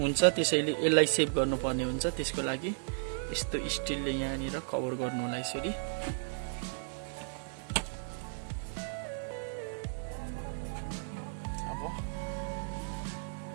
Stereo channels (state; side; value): silent; left; 55 dB below the other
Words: त्यसैले यसलाई सेभ गर्नुपर्ने हुन्छ। त्यसको लागि यस्तो स्टिलले यहाँनिर कभर गर्नु होला यसरी। अब